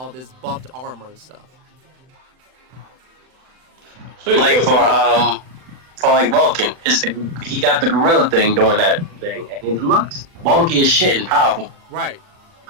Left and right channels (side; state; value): left; late; 39 ms